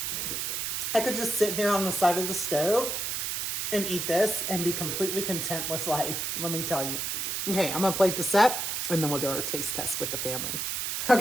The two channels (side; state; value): right; noise; hiss, 2 dB below the sound